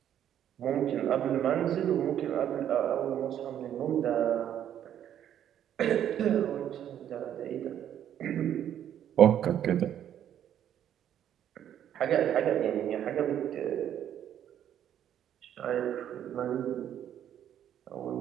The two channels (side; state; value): left; quieter; 10.3 dB